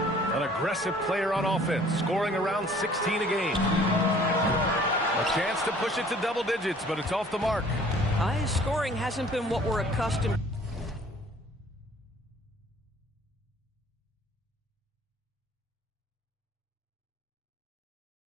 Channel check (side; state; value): both; normal; correlation 0.54